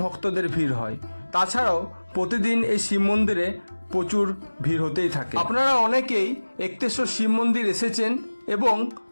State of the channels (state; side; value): inverted; both; correlation -1.00